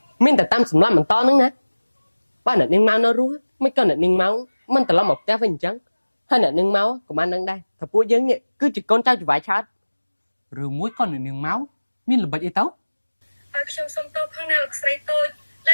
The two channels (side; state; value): both; inverted; correlation -1.00